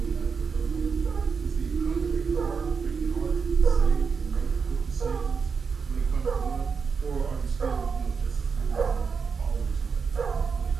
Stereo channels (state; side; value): quieter; left; 5.6 dB